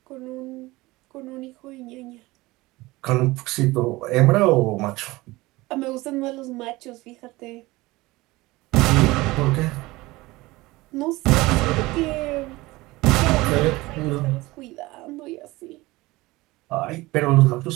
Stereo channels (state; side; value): quieter; left; 20.4 dB